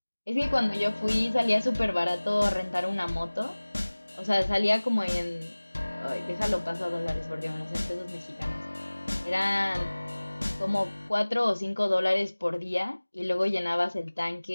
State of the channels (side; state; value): both; inverted; correlation -1.00